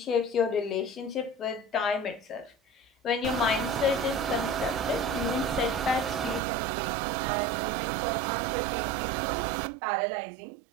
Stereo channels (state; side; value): drops out; left; at 6.4 s